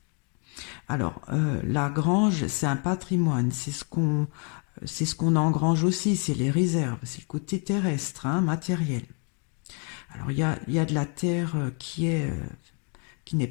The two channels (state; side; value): quieter; right; 37.7 dB